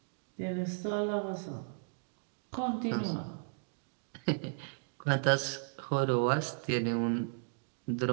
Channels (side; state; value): left; silent; digital silence